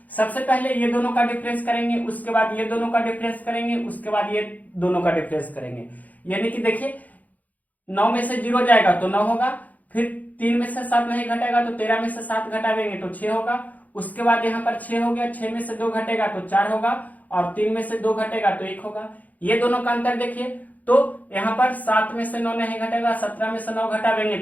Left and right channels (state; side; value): late; right; 0.078 ms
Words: सबसे पहले ये दोनों का डिफरेंस करेंगे, उसके बाद ये दोनों का डिफरेंस करेंगे, उसके बाद ये दोनों का डिफरेंस करेंगे। यानी कि देखिए 9 में से 0 जाएगा तो 9 होगा, फिर 3 में से 7 नहीं घटेगा तो 13 में से 7 घटावेंगे तो 6 होगा। उसके बाद यहाँ पर 6 हो गया, 6 में से 2 घटेगा तो 4 होगा और 3 में से 2 घटेगा तो 1 होगा। ये दोनों का अंतर देखिए, तो यहाँ पर 7 में से 9 नहीं घटेगा, 17 में से 9 घटावेंगे